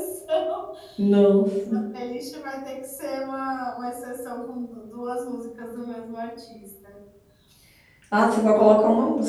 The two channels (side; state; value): both; identical; correlation 1.00